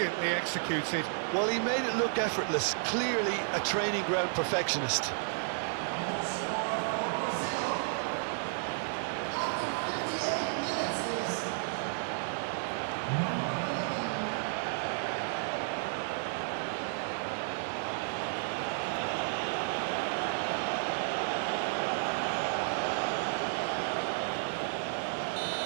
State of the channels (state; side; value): silent; left; digital silence